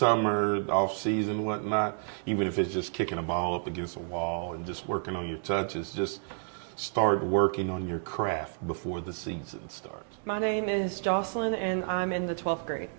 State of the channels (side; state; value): left; silent; digital silence